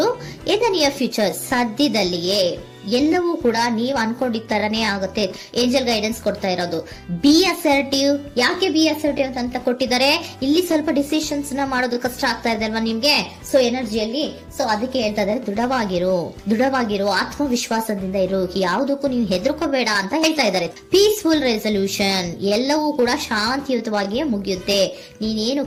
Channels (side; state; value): both; identical; correlation 1.00